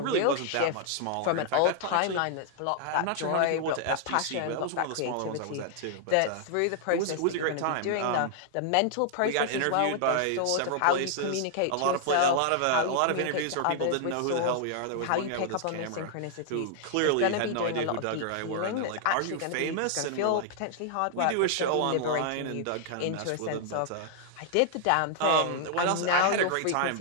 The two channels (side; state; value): both; different; correlation 0.00